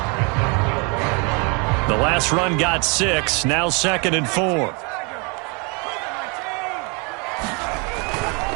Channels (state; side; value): quieter; left; 32.2 dB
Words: The last run got 6. Now 2nd and 4.